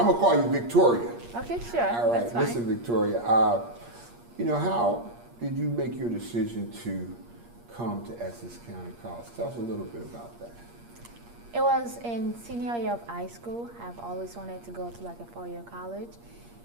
going to call you Victoria. Okay, sure. All right, That's fine. listen, Victoria, you know, how did you make your decision to come to Essex County College? Tell us a little bit about that. It was in senior year of high school. I've always wanted to go to like a 4-year college,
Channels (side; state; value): left; late; 8.5 ms